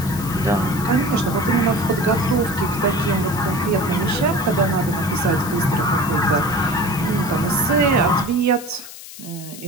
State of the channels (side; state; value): left; noise; hiss, 15 dB below the sound